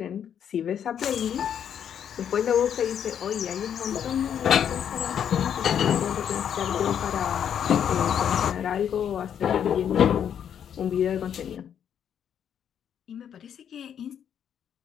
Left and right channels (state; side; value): quieter; right; 8.9 dB